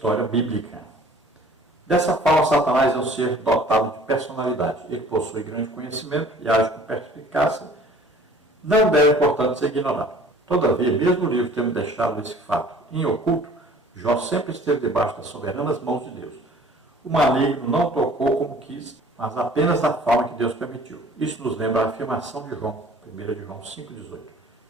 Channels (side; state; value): both; normal; correlation 0.51